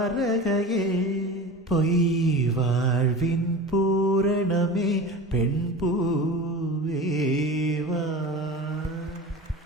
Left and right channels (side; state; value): both; normal; correlation 0.33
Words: பொய் வாழ்வின் பூரணமே பெண் பூவேவா